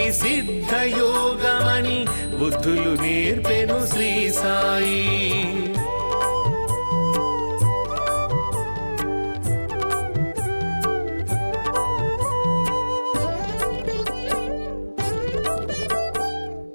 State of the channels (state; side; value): inverted; both; correlation -1.00